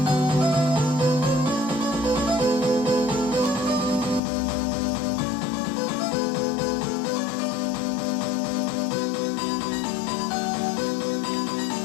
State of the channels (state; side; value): drops out; right; at 4.2 s